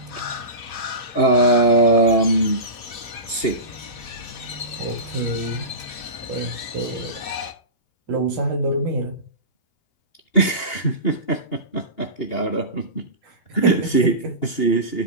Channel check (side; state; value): right; late; 2.8 ms